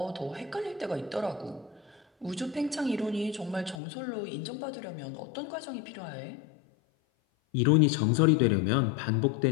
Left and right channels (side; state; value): right; drops out; at 3.8 s